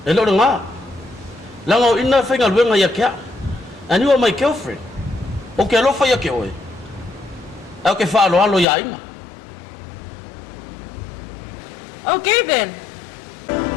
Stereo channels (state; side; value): drops out; right; at 8.7 s